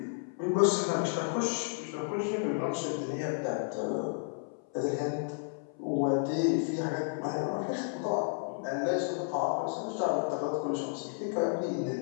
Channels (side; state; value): right; silent; 56 dB below the other